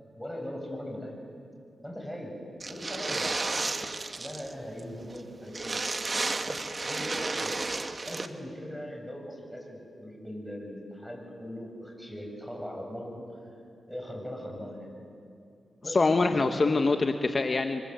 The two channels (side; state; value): both; normal; correlation 0.93